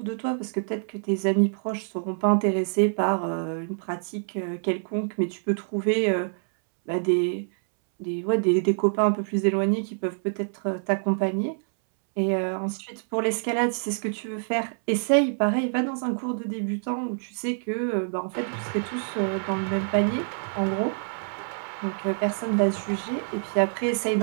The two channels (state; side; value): silent; left; 61 dB below the other